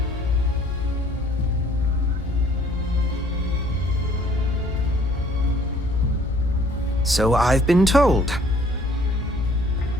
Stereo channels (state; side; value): normal; both; correlation 0.58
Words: So I've been told.